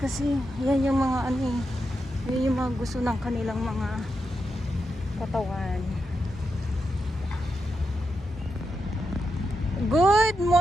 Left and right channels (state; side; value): normal; both; correlation 0.86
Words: yan yung mga ano eh, yan yung mga gusto ng kanilang mga katawan. Good